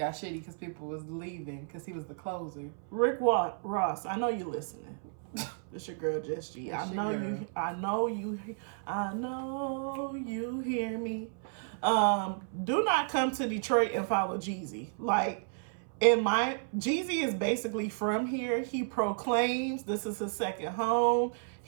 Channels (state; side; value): silent; left; 56 dB below the other